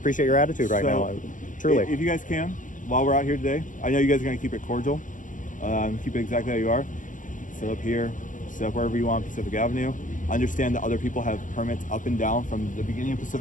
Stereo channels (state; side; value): late; right; 0.38 ms